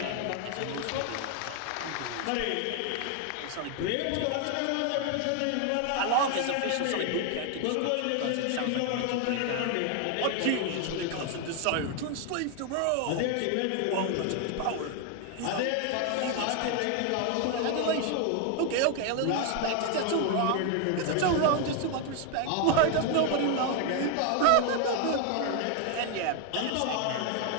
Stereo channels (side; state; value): both; different; correlation 0.01